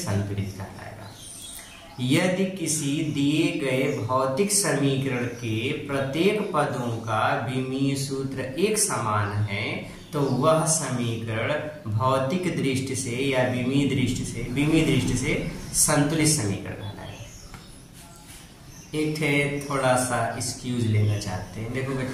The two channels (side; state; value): both; identical; correlation 1.00